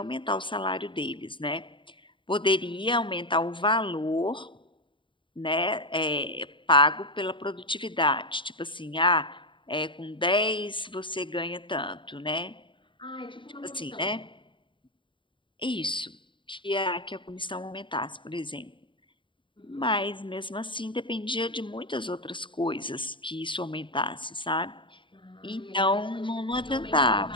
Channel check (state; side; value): late; right; 0.24 ms